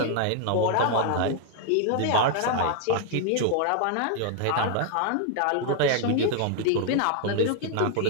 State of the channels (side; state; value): both; different; correlation 0.00